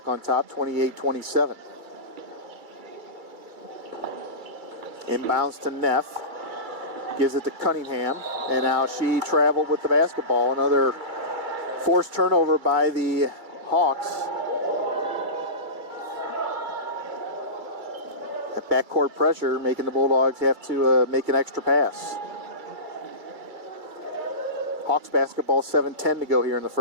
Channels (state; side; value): late; left; 2.2 ms